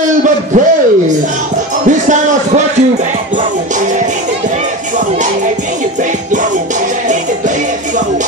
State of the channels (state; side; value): normal; both; correlation 0.26